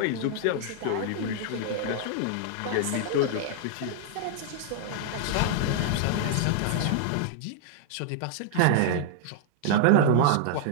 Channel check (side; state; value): both; different; correlation -0.01